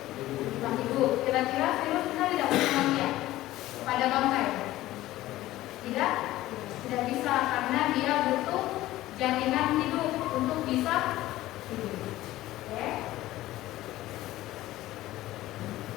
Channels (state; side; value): quieter; right; 16.0 dB